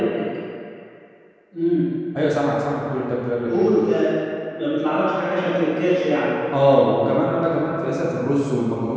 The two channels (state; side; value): identical; both; correlation 1.00